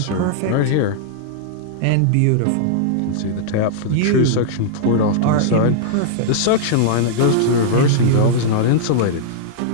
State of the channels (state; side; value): different; both; correlation -0.01